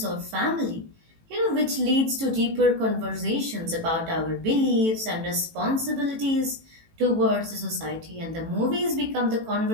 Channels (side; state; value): left; late; 18 ms